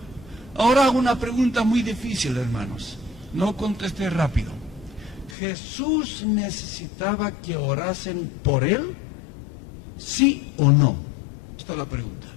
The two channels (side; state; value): right; drops out; at 5.4 s